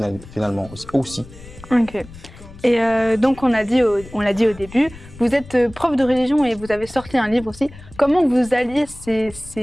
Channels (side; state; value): left; noise; rumble, 18 dB below the sound